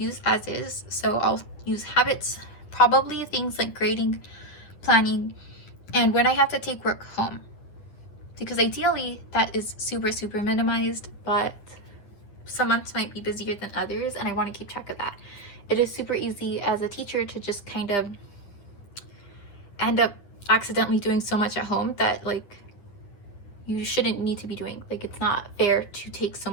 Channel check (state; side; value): late; right; 9.8 ms